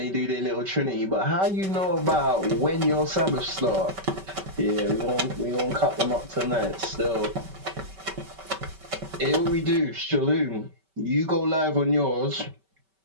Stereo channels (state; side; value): late; left; 5.2 ms